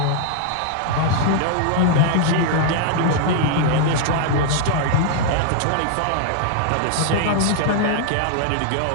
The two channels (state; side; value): different; both; correlation 0.00